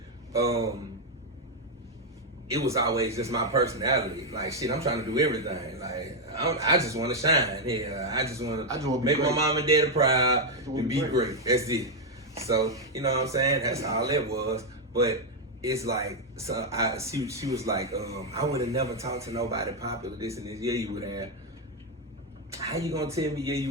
It was always just my personality. Like, shit, I'm trying to do everything. Like, I just want to shine. Yeah, I just want to make my mom and dad proud and be great. That's it. So, you know what I'm saying? That's all it was. But it's like, so she was like, I would have never talked to nobody popular, this and this. Yeah, you would have. How you gonna tell me,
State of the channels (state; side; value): normal; both; correlation 0.02